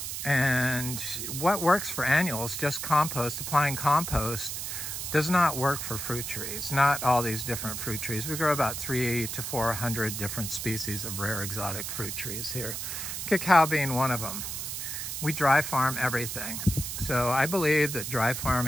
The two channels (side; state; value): right; noise; hiss, 5 dB below the sound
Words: And what works for annuals, just compost, applying compost, does not work for fruit trees. Not all these different fruit trees. We grow about 300 to 400 different species of rare exotic fruit trees here. Cacao being one of them. We dry farm everything. So I believe that dry